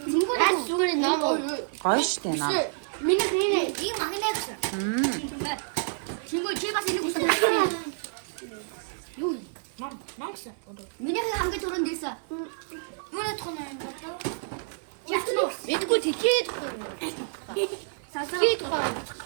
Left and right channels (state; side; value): silent; left; 59 dB below the other